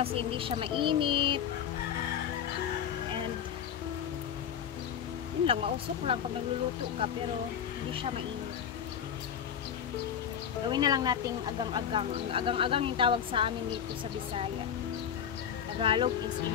hindi siya mainit. And yun lang, mausok lang pag nagluluto ka, pero hindi siya mainit. Gawin na lang nating agang-agang. Ang agang-agang yung tawag sa amin dito sa Bisaya. Tagalog is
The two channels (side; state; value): right; quieter; 8.6 dB